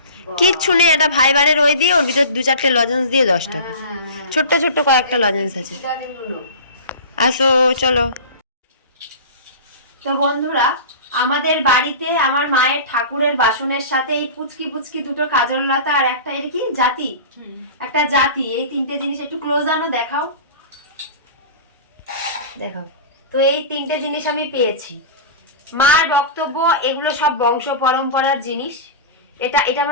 কিচ্ছু নেই, এটা ফাইবারের ওই দিয়ে ওর ভিতর 2-4টে লজেন্স দিয়ে 10 টাকা। ছোট্ট ছোট্ট কয়েকটা লজেন্স আছে। আসো চলো। তো বন্ধুরা, আমাদের বাড়িতে আমার মায়ের ঠাকুরের বাসনের সাথে এই পুচকি পুচকি দুটো কাজল লতা আর একটা এর কি জাতি, একটা জাতি, এই 3টে জিনিস একটু ক্লোজ আনো, দেখাও দেখাও। তো এই 3টে জিনিস আমি পেয়েছি। মার বক্তব্য এগুলো সব বংশ পরম্পরার জিনিস। এটা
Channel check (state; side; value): inverted; both; correlation -0.33